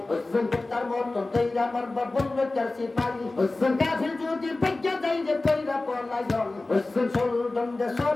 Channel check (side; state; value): right; quieter; 3.1 dB